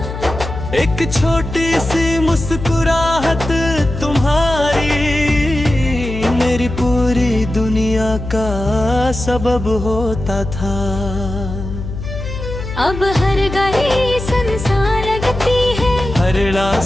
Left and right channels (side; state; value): left; noise; hum, 8 dB below the sound